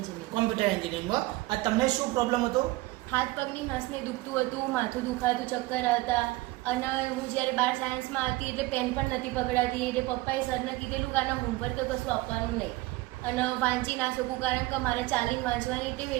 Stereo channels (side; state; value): left; quieter; 20.0 dB